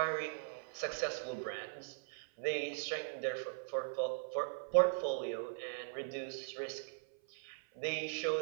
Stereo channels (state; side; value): silent; left; 51 dB below the other